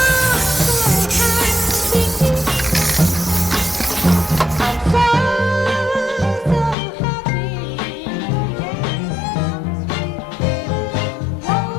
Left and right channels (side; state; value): right; drops out; at 6.8 s